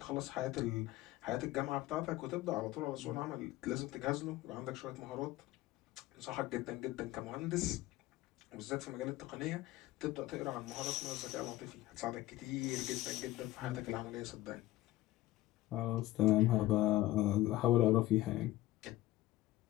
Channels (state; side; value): quieter; right; 16.4 dB